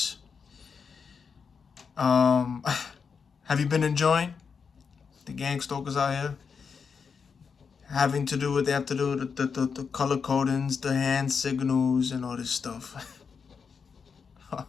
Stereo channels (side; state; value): right; quieter; 5.9 dB